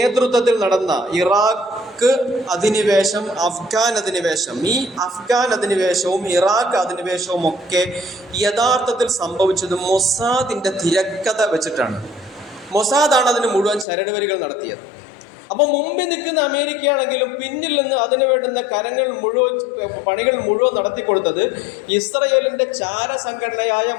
നടന്ന ഇറാഖ് അധിനിവേശം, അഫ്ഗാൻ അധിനിവേശം. ഈ അഫ്ഗാൻ അധിനിവേശവും ഇറാഖ് അധിനിവേശവും ഒക്കെ യഥാർത്ഥത്തിൽ സംഭവിച്ചത് മൊസാദിന്റെ തിരക്കഥ വെച്ചിട്ടാണ്. മൊസാദാണ് അതിന് മുഴുവൻ ചരടുവരികൾ നടത്തിയത്. അപ്പം മുമ്പിൽ നിൽക്കുന്ന അമേരിക്കയാണെങ്കിലും പിന്നിൽ നിന്ന് അതിന് വേണ്ടുന്ന പണികൾ മുഴുവൻ നടത്തിക്കൊടുത്തത് ഇസ്രയേലിന്റെ ചാരസംഘടനയായ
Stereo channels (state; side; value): drops out; right; at 13.9 s